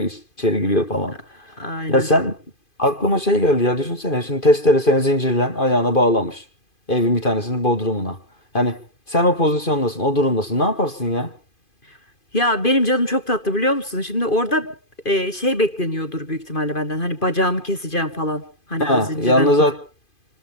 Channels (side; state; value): right; late; 2.5 ms